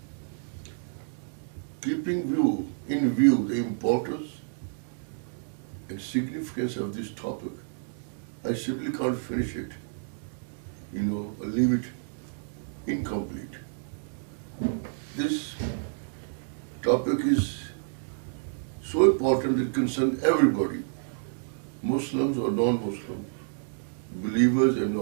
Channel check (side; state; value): left; silent; digital silence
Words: Keeping in view the importance and significance of this topic, I simply can't finish it, or leave it incomplete. This topic is so important it concerns everybody, Muslims or non-Muslims, believers and